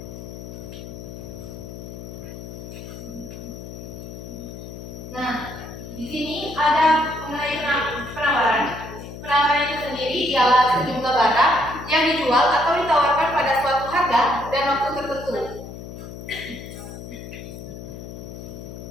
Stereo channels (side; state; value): left; noise; hum, 11 dB below the sound